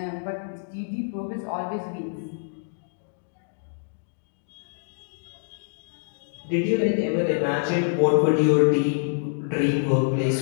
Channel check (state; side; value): silent; right; digital silence